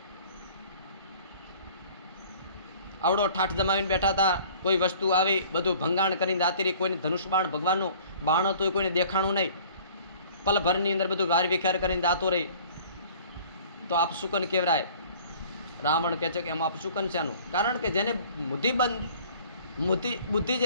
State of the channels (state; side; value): inverted; both; correlation -0.50